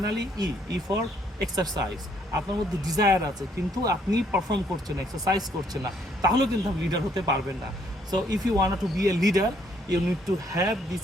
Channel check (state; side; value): normal; both; correlation 0.68